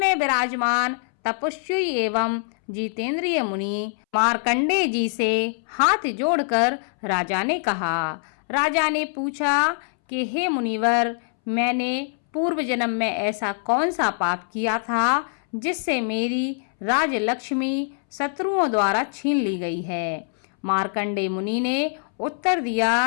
विराजमान तपस्वी एवं जितेंद्रिय मुनि मार्कंडेय जी से हाथ जोड़कर राजा ने कहा। राजा ने पूछा कि हे मुनिवर, मैंने पूर्व जन्म में ऐसा कौन सा पाप किया था जिससे मेरी राजलक्ष्मी शत्रुओं द्वारा छीन ली गई है। मार्कंडेय मुनि ने उत्तर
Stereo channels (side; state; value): right; silent; 63 dB below the other